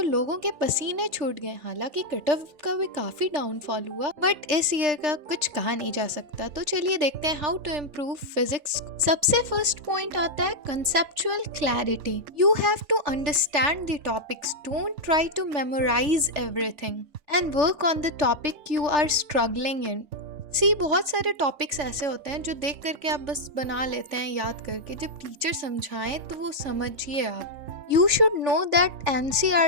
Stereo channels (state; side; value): late; left; 3.4 ms